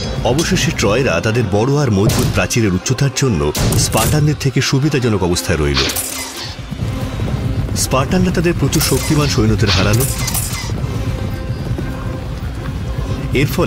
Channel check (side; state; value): both; identical; correlation 1.00